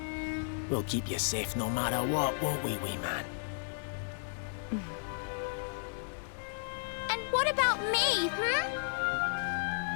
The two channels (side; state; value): right; silent; digital silence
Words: We'll keep you safe no matter what, won't we, wee man? And what about me,